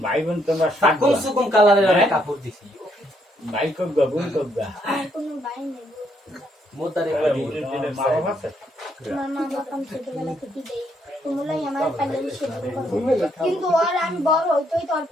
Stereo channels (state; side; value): normal; both; correlation 0.73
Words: ভাই বোন তোমরা কম সুকম কালারের কাপড় দিছি। ভাই কবগা বোন কবগা? কোনো ভাই নেই। মোতারে মা বাবা আছে? আমার মা বাবা ছোটবেলা থেকে দেয়, তোমরাই আমার প্যান্ডেলে সেবা করো। কিন্তু আর আমি বড় হইতেই তো আর